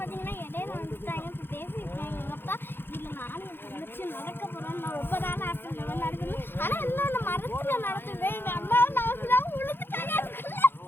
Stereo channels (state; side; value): late; right; 0.10 ms